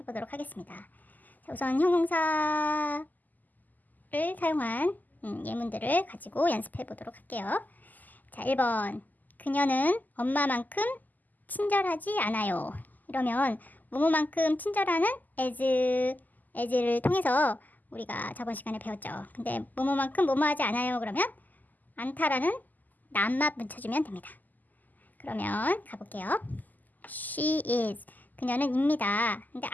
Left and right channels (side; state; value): right; late; 0.083 ms